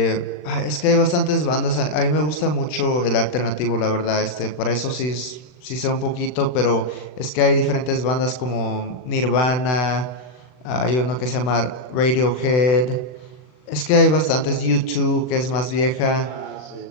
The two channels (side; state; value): right; late; 39 ms